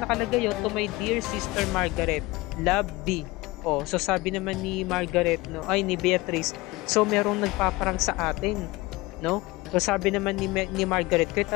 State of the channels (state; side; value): quieter; right; 21.2 dB